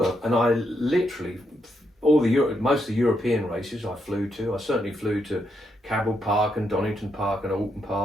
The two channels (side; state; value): both; normal; correlation 0.80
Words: and I literally most of the European races I flew to. I certainly flew to Cabell Park and Donington Park and Alton